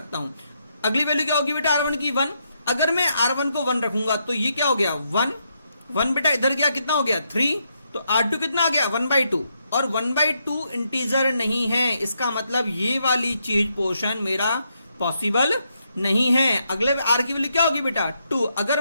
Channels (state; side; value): inverted; both; correlation -0.79